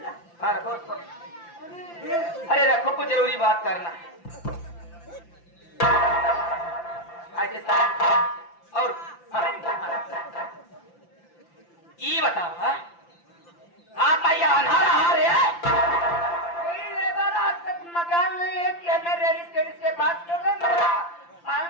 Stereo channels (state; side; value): late; right; 5.9 ms